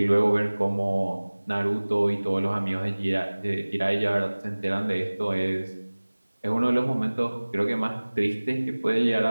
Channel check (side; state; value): both; inverted; correlation -1.00